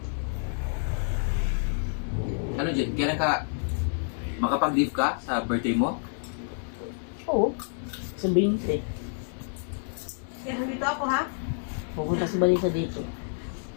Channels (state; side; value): silent; right; digital silence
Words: Ano dyan? Kailan ka makapag-leave ka sa birthday mo? Oo. Sa 20. Kaya nandito ako ha. Pupunta si Balisa dito.